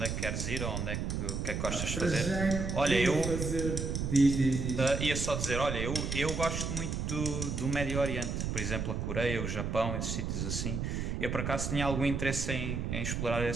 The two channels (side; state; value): right; noise; rumble, 2 dB below the sound